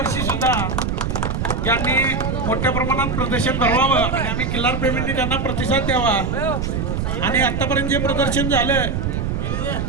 सुद्धा यांनी मोठ्या प्रमाणात प्रदर्शन भरवावं आणि आम्ही खिल्लारप्रेमींनी त्यांना प्रतिसाद द्यावा. आणि आतापर्यंत जे प्रदर्शन झालं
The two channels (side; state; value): right; noise; rumble, 1 dB below the sound